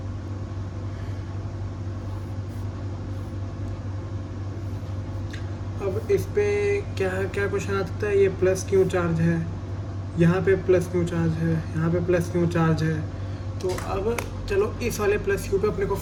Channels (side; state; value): both; identical; correlation 1.00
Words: अब इस पे क्या क्या क्वेश्चन आता है। ये प्लस क्यू चार्ज है, यहाँ पे प्लस क्यू चार्ज है, यहाँ पे प्लस क्यू चार्ज है। तो अब चलो इस वाले प्लस क्यू पे अपने को